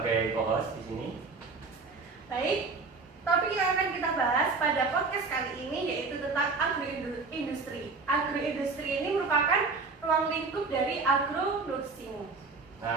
co-host di sini. baik. Topik yang akan kita bahas pada podcast kali ini yaitu tentang agroindustri. Agroindustri ini merupakan ruang lingkup dari agro nursing.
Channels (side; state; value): left; quieter; 4.2 dB